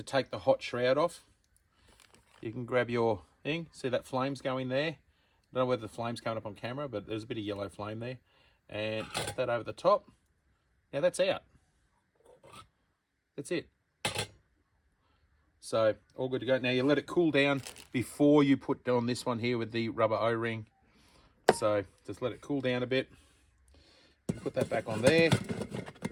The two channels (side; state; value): both; identical; correlation 1.00